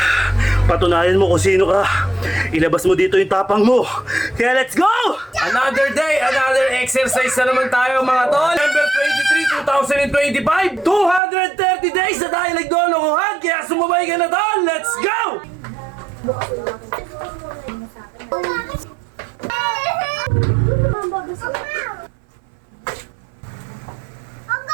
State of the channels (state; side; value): drops out; left; at 11.2 s